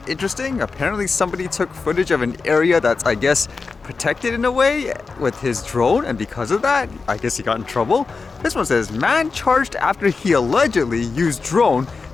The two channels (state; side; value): quieter; right; 4.5 dB